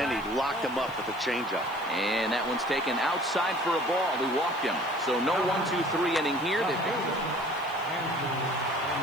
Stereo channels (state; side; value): noise; right; hiss, 25 dB below the sound